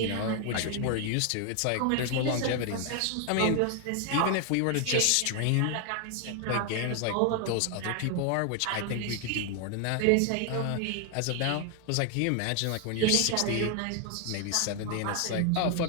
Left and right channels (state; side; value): different; both; correlation 0.00